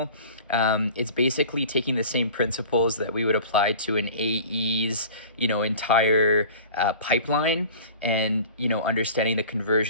It's basically taking the same principles that we would apply to an AE's, entire pipeline, and understanding the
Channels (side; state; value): both; inverted; correlation -0.41